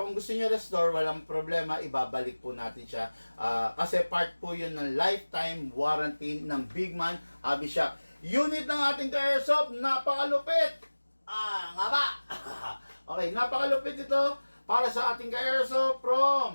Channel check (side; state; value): both; inverted; correlation -1.00